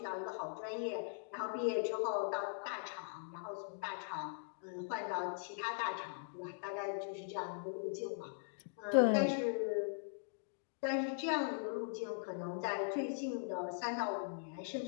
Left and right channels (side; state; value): right; silent; digital silence